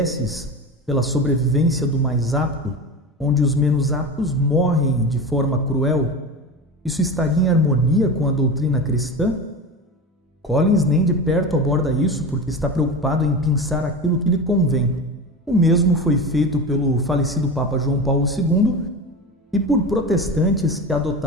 pela sobrevivência do mais apto, onde os menos aptos morrem de forma cruel. Isso estaria em harmonia com a doutrina cristã? Collins nem de perto aborda isso porque está preocupado em pensar aquilo que lhe convém. O mesmo foi feito pelo falecido Papa João Paulo II e por protestantes que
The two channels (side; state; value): both; normal; correlation 0.26